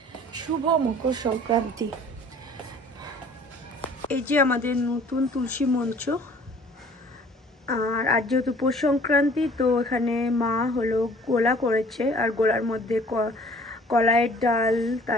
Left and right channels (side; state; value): both; normal; correlation 0.52